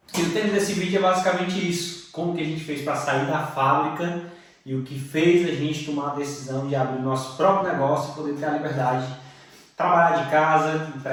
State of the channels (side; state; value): both; identical; correlation 1.00